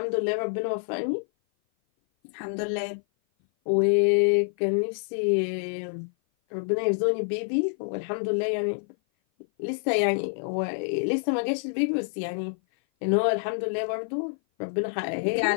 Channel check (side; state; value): right; silent; 56 dB below the other